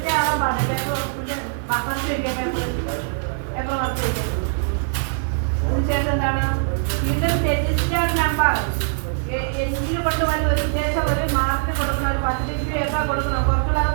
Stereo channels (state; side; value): silent; left; 64 dB below the other